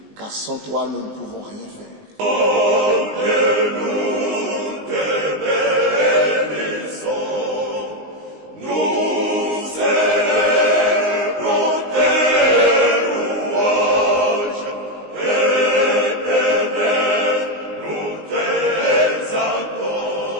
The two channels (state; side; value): late; left; 19 ms